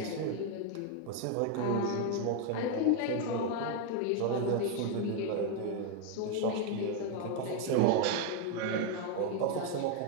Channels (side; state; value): both; different; correlation 0.01